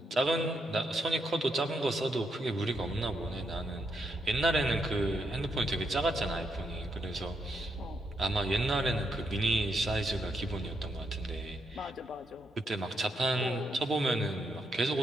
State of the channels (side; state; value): both; normal; correlation 0.80